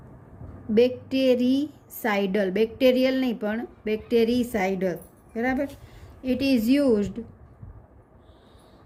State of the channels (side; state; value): both; identical; correlation 1.00